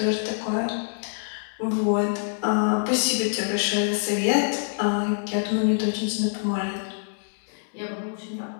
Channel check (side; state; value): right; silent; digital silence